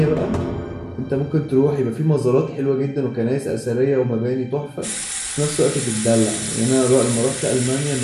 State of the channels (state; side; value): identical; both; correlation 1.00